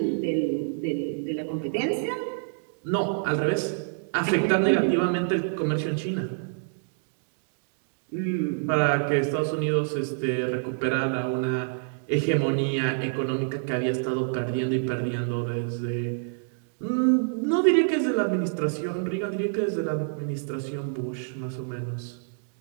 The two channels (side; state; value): left; silent; digital silence